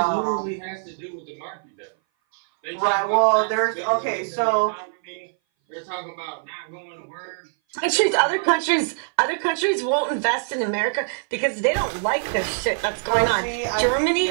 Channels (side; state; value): left; silent; 59 dB below the other